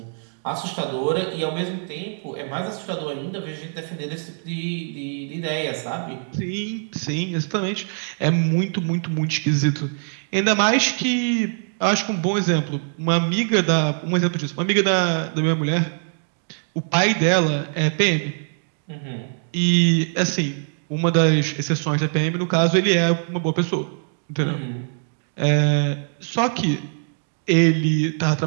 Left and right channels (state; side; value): silent; left; 62 dB below the other